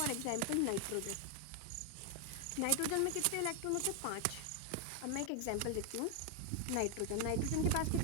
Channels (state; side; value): different; both; correlation 0.00